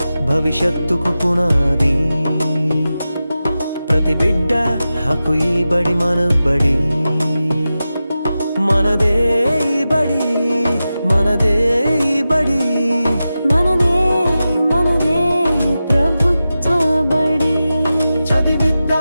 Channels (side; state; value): both; inverted; correlation -0.93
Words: భవిష్యత్తుకు పునాది ప్రతి బిడ్డ హక్కు ఈ బడి మన బడి మనదే ఈ బడి మనదే ఈ బడి మనదే మనదే ప్రభుత్వ బడి